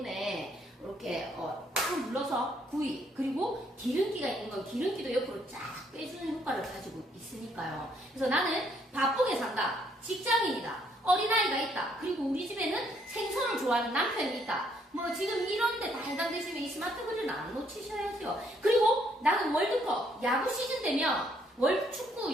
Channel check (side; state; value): both; normal; correlation 0.69